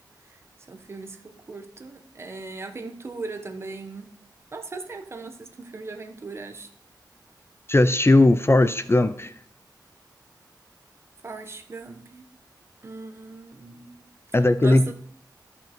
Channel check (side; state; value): both; normal; correlation 0.91